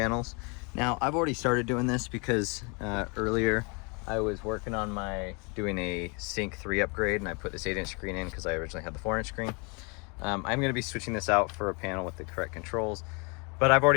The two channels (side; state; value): right; quieter; 32.3 dB